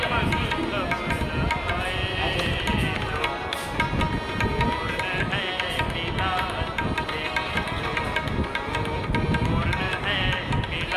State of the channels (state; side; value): identical; both; correlation 1.00